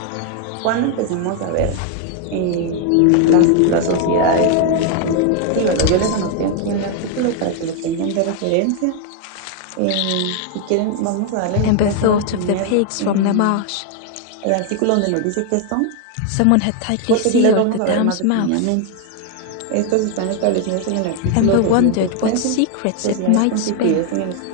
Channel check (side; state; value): both; different; correlation 0.00